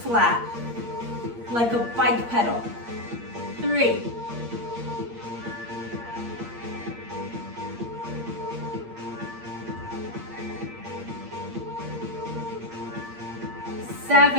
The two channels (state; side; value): late; left; 8.6 ms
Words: flat, like a bike pedal. 3,